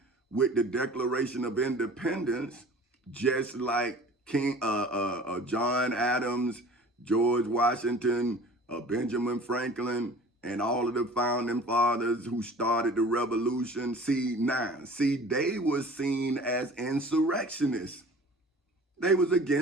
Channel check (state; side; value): normal; both; correlation 0.45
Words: with the Declaration of Independence, just like John Adams, George Washington, Benjamin Franklin, and all of the founding fathers who started the revolution. See, they were seen as insurrectionists. They was